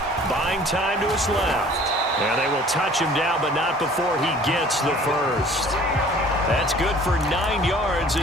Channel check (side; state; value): both; normal; correlation 0.50